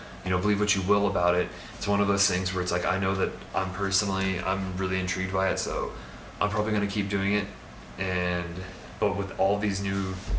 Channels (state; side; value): identical; both; correlation 1.00